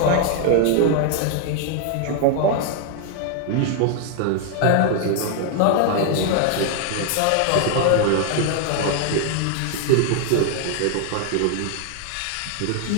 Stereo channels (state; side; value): different; both; correlation 0.00